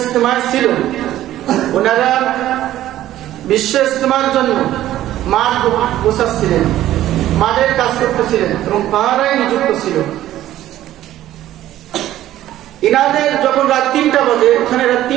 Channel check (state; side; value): quieter; left; 13.5 dB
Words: ছিল ওনারা বিশ্ব ইজতেমার জন্য মাঠ গোছাচ্ছিলেন, মাঠের কাজ করতেছিলেন এবং পাহারায় নিযুক্ত ছিল। ইনাদের যখন রাত 3টা বাজে, ওখানে রাত